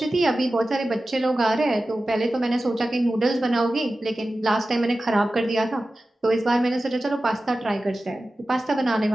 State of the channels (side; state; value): both; normal; correlation 0.95